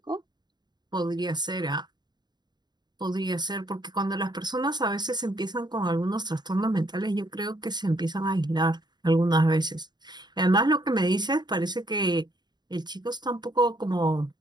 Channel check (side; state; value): left; late; 0.20 ms